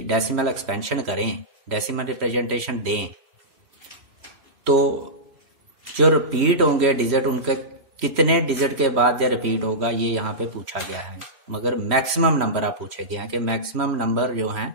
डेसिमल एक्सपेंशन करें, डेसिमल रिप्रेजेंटेशन दें, तो जो रिपीट होंगे डिजिट उनके कितने डिजिट के बाद या रिपीट होगा ये यहाँ पे पूछा गया है। मगर मैक्सिमम नंबर आप पूछे गए हैं कि मैक्सिमम नंबर जो हैं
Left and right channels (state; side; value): late; left; 3.1 ms